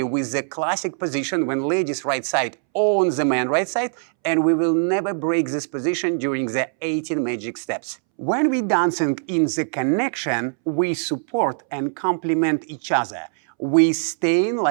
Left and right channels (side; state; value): left; silent; 64 dB below the other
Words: with the classic position when ladies right side on the man right side, and we will never break this position during the 18 magic steps. When we're dancing in the connection, we support and complement each other. We stay in